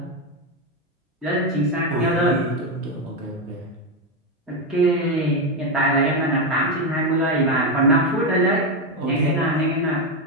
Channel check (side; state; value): both; normal; correlation 0.09